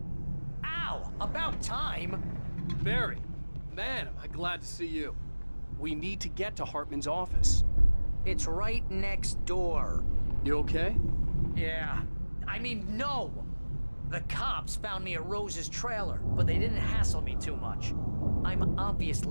Ow! About time! Barry, man, am I glad to see you. We need to get to Hartman's office. It's right next door. You okay? Yeah. I mean, no! The cops found me at Rose's trailer, but they didn't hassle me too much. I'm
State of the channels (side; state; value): both; inverted; correlation -1.00